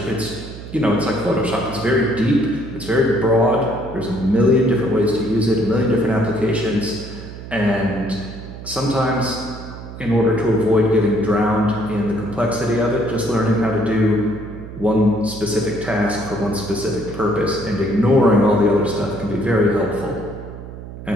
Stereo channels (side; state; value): right; noise; hum, 12 dB below the sound